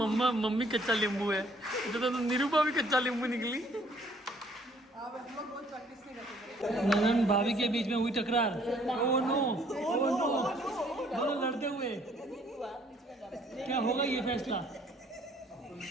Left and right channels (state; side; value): normal; both; correlation 0.62